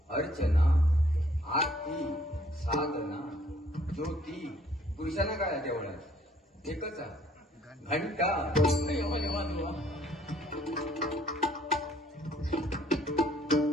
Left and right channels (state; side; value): normal; both; correlation 0.62